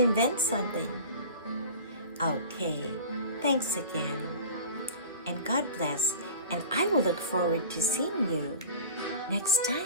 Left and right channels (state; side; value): inverted; both; correlation -0.37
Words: something. Okay, thanks again. And God bless. And I will look forward to seeing you next